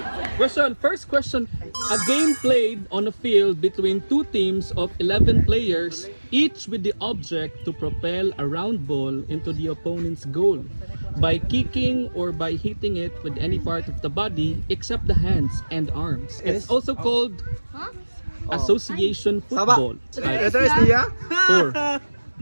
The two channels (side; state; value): both; inverted; correlation -1.00